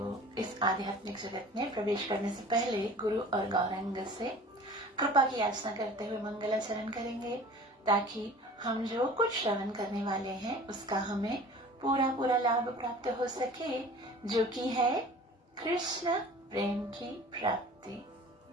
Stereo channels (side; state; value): both; normal; correlation 0.44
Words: इस आध्यात्मिक जगत में प्रवेश करने से पहले गुरु और गौरांग से कृपा की याचना करते हुए मंगलाचरण करेंगे, ताकि हम जो कुछ श्रवण करने वाले हैं उसका हमें पूरा लाभ प्राप्त हो सके, जो कि है कृष्ण प्रेम की प्राप्ति।